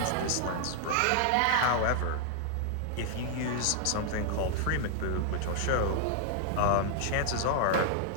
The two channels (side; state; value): both; different; correlation 0.00